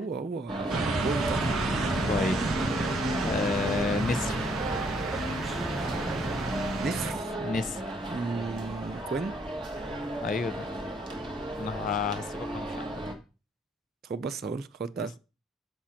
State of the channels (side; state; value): both; normal; correlation 0.67